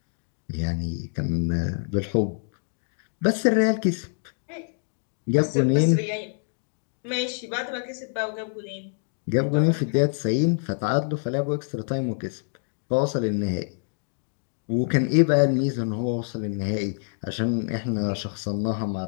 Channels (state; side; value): silent; right; digital silence